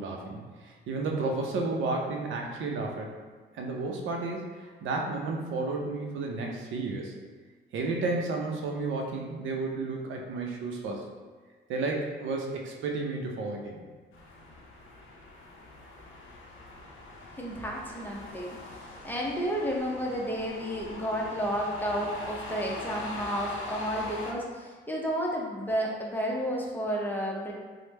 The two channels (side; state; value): both; normal; correlation 0.38